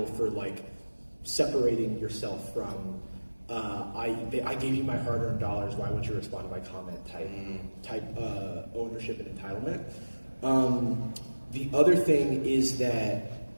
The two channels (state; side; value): inverted; both; correlation -1.00